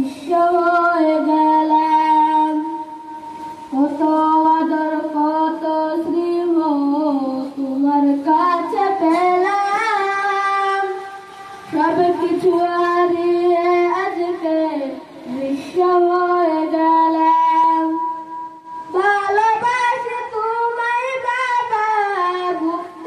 হয়ে গেলাম। কত আদর কত স্নেহ তোমার কাছে পেলাম, সব কিছু হারিয়ে আজকে নিঃস্ব হয়ে গেলাম। ভালোবাসি তোমায় বাবা,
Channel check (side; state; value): both; identical; correlation 1.00